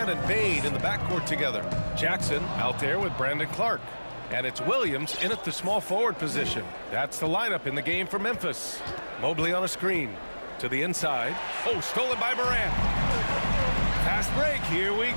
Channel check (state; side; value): inverted; both; correlation -1.00